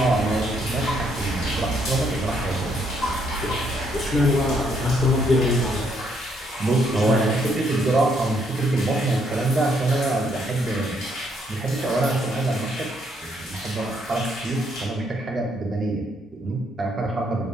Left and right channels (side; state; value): both; normal; correlation 0.71